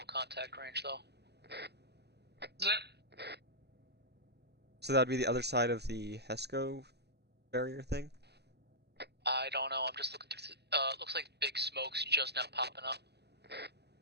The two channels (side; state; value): left; late; 0.49 ms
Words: contact range, though. Is it? So that'd be the other side of the HESCO barrier thing? I don't know, I'm just looking through, looks like big smoke's just now popping up.